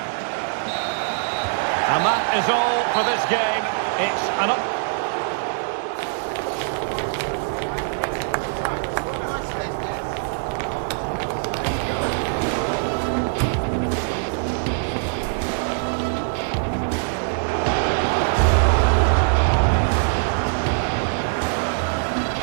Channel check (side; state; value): left; silent; digital silence